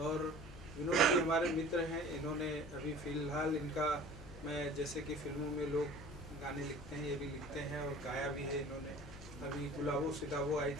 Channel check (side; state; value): both; normal; correlation 0.44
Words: विनोद जी हमारे मित्र हैं, इन्होंने अभी फ़िलहाल इनका, मैं जैसे कि फिल्मों में लोग गाने लिखते हैं, ये भी लिखते हैं और गाया भी है इन्होंने। अभी गुलाबो सिताबो आई